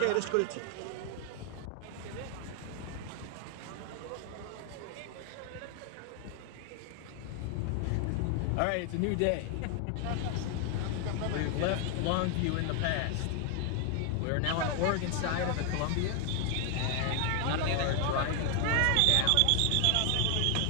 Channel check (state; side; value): different; both; correlation 0.00